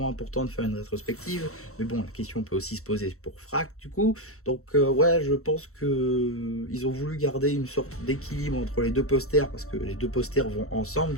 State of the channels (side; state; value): right; late; 0.63 ms